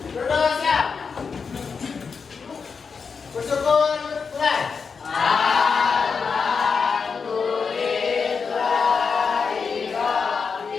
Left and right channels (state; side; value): quieter; right; 5.5 dB